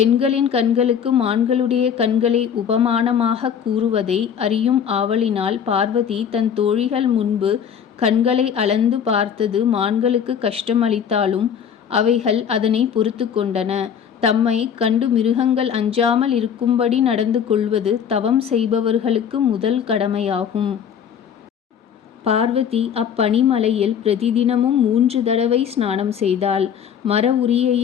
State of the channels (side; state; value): right; quieter; 8.0 dB